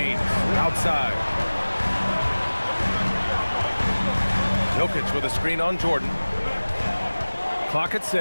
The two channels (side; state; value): both; inverted; correlation -1.00